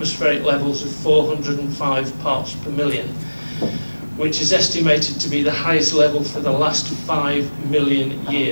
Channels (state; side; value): inverted; both; correlation -1.00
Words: levels of 405 parts per million, which is estimated to be the highest level for the last 5 million